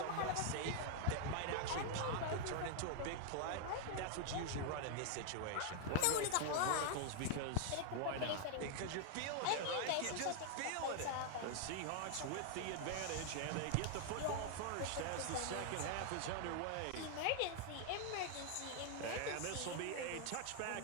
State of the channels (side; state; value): both; different; correlation 0.00